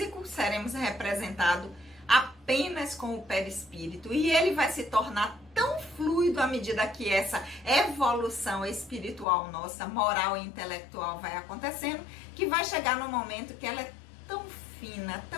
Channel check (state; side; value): drops out; right; at 9.2 s